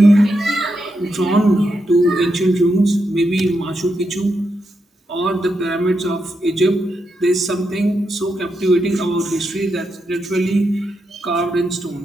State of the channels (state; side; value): normal; both; correlation 0.84